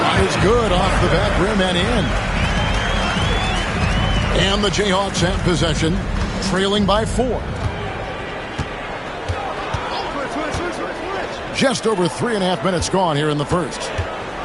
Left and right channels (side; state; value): both; identical; correlation 1.00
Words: is good off the back rim and in. And the Jayhawks have possession. Trailing by 4. Just over 3.5 minutes gone here in the first.